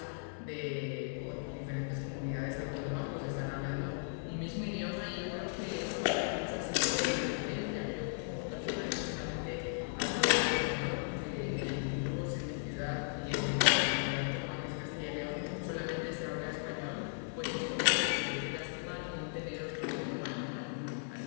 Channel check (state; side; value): silent; right; digital silence